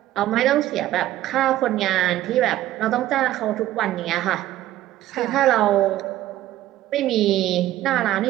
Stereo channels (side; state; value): left; quieter; 14.3 dB